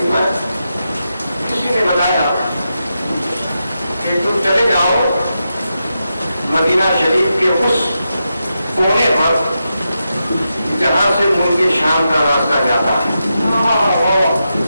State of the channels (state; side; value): inverted; both; correlation -0.87